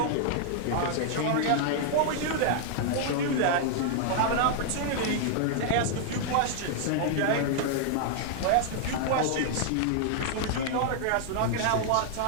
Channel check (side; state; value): both; different; correlation 0.00